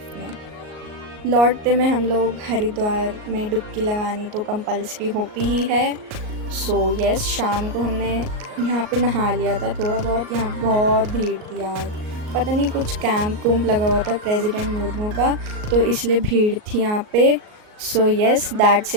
में। लौटते में हम लोग हरिद्वार में डुबकी लगानी तो कंपल्सरी होती ही है। सो यस, शाम को हमने यहाँ पे नहा लिया था थोड़ा बहुत। यहाँ बहुत भीड़ थी यार, पता नहीं कुछ कैंप लगा हुआ था प्रेसिडेंट मुर्मू का, तो इसलिए भीड़ थी यहाँ पे। So yes, that's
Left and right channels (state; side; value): late; left; 38 ms